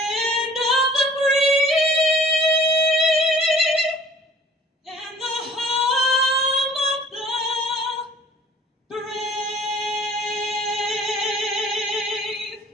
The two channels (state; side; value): normal; both; correlation 0.51